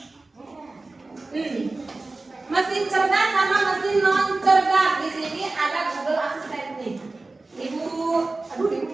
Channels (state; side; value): quieter; left; 3.3 dB